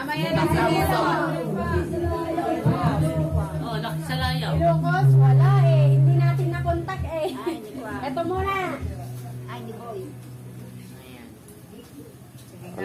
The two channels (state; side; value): identical; both; correlation 1.00